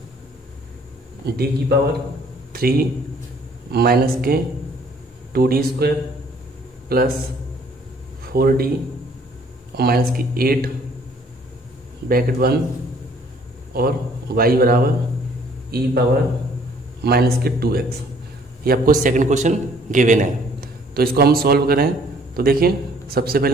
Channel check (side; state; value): both; normal; correlation 0.59